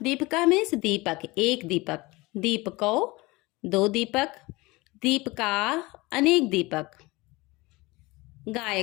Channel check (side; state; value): right; quieter; 22.6 dB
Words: दीपका मीन्स दीपक, एक दीपक, दीपकौ दो दीपक, दीपका अनेक दीपक।